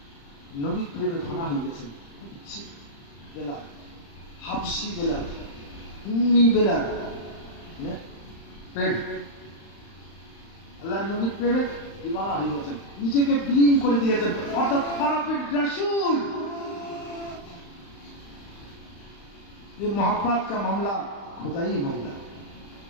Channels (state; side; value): late; right; 35 ms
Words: নবীর প্রেমে ফানা হয়ে গেছেন। কুচ্ছি বেলাল, হাবশি বেলাল, উম্মি বেলাল, প্রেম আল্লাহ নবীর প্রেমে দিওয়ানা হয়ে গেছেন, নিজেকে বিলীন করে দিয়েছেন। অর্থাৎ খারাপের রাসূল। ये मोहब्बत का मामला खुदाई मामला,